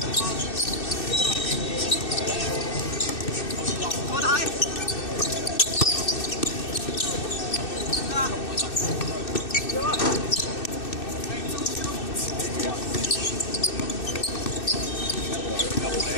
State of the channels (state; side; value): late; right; 2.6 ms